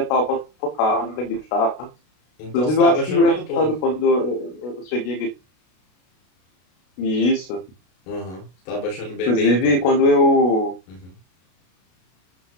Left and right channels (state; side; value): late; right; 33 ms